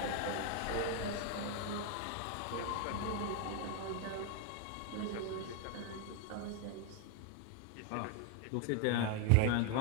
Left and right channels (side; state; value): both; different; correlation 0.01